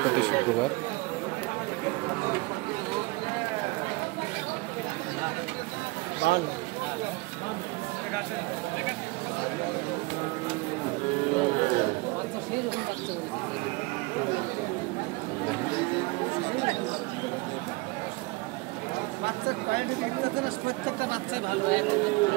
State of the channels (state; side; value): quieter; left; 24.5 dB